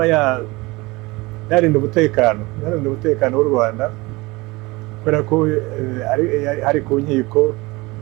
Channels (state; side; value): quieter; left; 23.0 dB